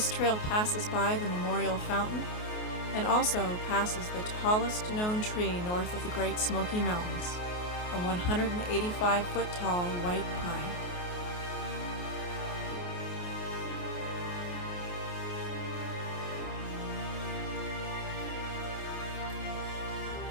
trail passes by the Memorial Fountain and also passes the tallest known tree north of the Great Smoky Mountains, a 185-foot tall white pine.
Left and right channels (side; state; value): right; late; 28 ms